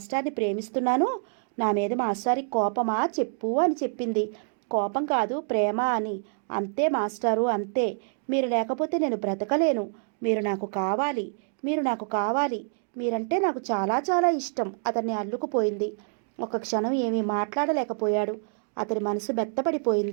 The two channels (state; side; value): silent; left; 60 dB below the other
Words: ప్రేమిస్తున్నాను, నా మీద మాస్టారికి కోపమా చెప్పు అని చెప్పింది. కోపం కాదు, ప్రేమ అని. అంతే మాస్టారు, అంతే. మీరు లేకపోతే నేను బ్రతకలేను. మీరు నాకు కావాలి, మీరు నాకు కావాలి, మీరంటే నాకు చాలా చాలా ఇష్టం. అతన్ని అల్లుకుపోయింది. ఒక క్షణం ఏమీ మాట్లాడలేకపోయాడు. అతని మనసు